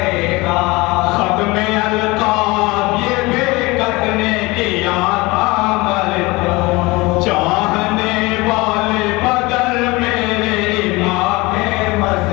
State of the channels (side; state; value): right; quieter; 23.1 dB